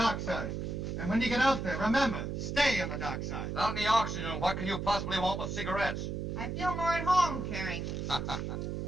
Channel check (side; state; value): right; noise; hum, 3 dB below the sound